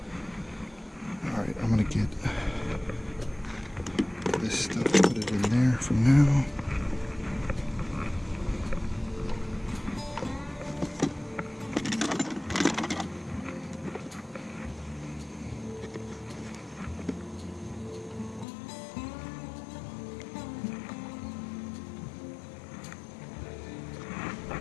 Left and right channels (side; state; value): right; drops out; at 18.4 s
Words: Alright, I'm gonna get this stuff, put it in there for now.